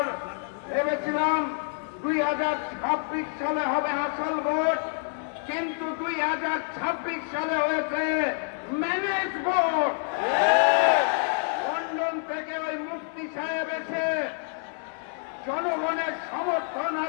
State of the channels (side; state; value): right; silent; 57 dB below the other